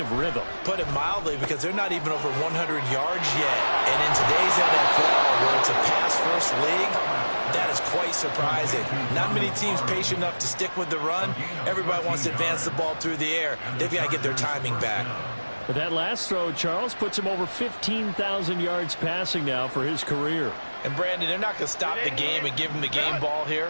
rhythm. Put it mildly, because they're not even over 100 yards yet. And in today's NFL, where it's a pass-first league, that is quite surprising. Not many teams patient enough to stick with the run. Everybody wants to advance the ball through the air. They've got to get their timing back. But that last throw, Charles, puts him over 15,000 yards passing now for his career. And, Brandon, they're not going to stop the game and give him the game ball here,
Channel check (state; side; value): inverted; both; correlation -1.00